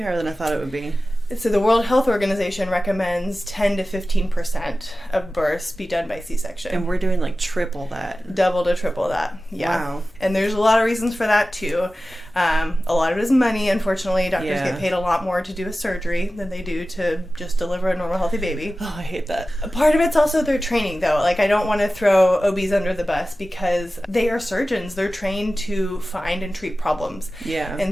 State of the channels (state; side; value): normal; both; correlation 0.95